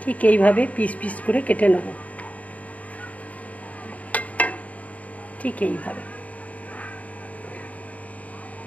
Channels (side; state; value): right; late; 0.070 ms